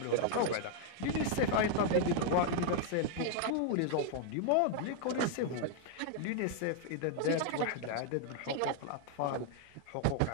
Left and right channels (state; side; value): different; both; correlation 0.00